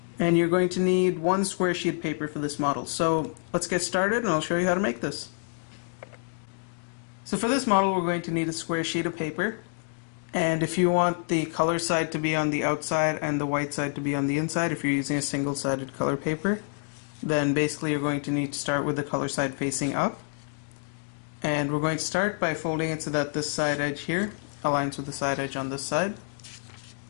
And you're going to need one square sheet of paper for this model. So let's get started and I'll show you how to make this. So for this model we're going to need a square sheet of paper, and if you want the color side to be on the outside and the white side to be on the inside, if you're using a single-sided color paper, then basically you're going to need to start with the color side facing up. And we're going to start by folding it so that this side edge here aligns with the side edge on this side.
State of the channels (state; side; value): silent; right; 56 dB below the other